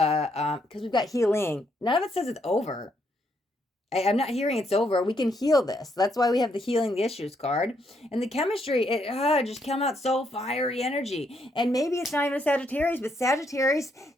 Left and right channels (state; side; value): normal; both; correlation 0.75